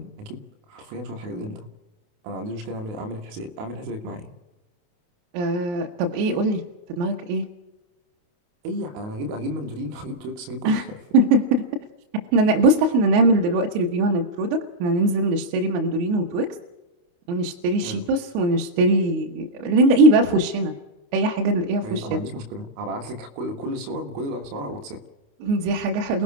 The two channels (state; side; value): late; left; 29 ms